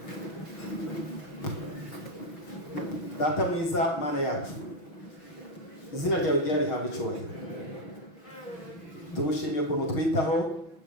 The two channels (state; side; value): late; right; 6.1 ms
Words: Data mwiza, Mana yacu, izina ryawe ryari rihabwa icyubahiro. Tugushimiye ukuntu twitaho,